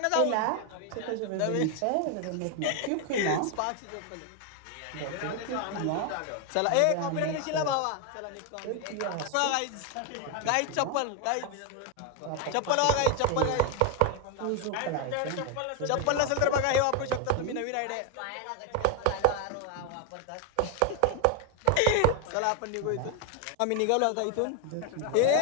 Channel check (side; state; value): both; different; correlation 0.01